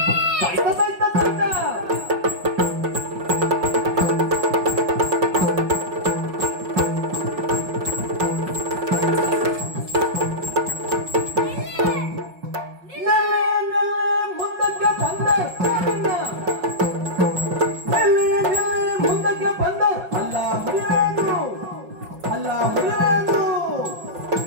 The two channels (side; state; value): left; late; 5.4 ms